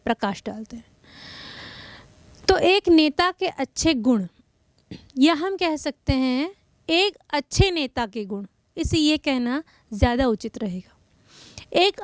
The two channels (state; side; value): identical; both; correlation 1.00